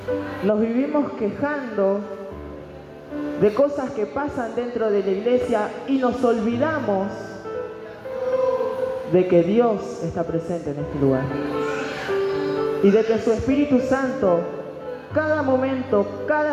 Nos vivimos quejando de cosas que pasan dentro de la iglesia y nos olvidamos de que Dios está presente en este lugar y de que su Espíritu Santo cada momento,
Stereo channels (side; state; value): both; identical; correlation 1.00